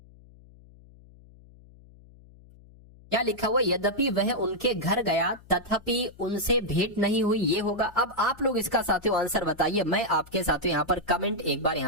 क्या लिखा हुआ, यद्यपि वह उनके घर गया तथापि उनसे भेंट नहीं हुई, ये होगा। अब आप लोग इसका साथियों आंसर बताइए, मैं आपके साथियों यहाँ पर कमेंट एक बार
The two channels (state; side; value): noise; left; hum, 24 dB below the sound